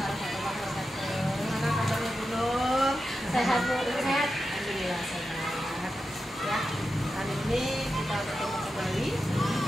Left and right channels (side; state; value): both; normal; correlation 0.90